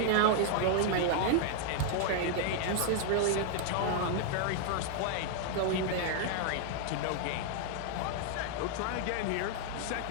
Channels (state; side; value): different; both; correlation 0.00